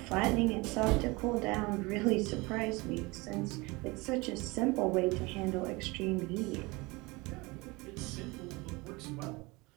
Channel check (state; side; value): quieter; left; 24.5 dB